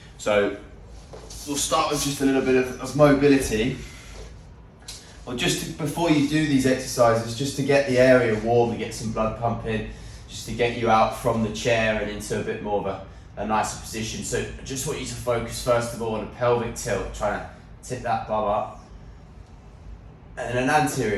So we'll start with just a little bit of mobility. Well, before you do these exercises, just to get the area warm, to get some blood pumping, just to get you out from the chair and into a bit more of a nicer position. So I just want you to focus first of all on a pelvic tilt, trying to tip that bum up. And an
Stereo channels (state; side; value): identical; both; correlation 1.00